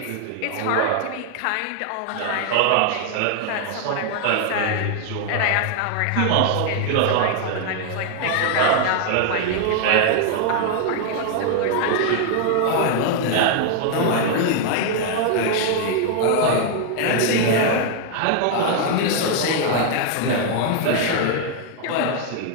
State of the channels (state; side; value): different; both; correlation 0.00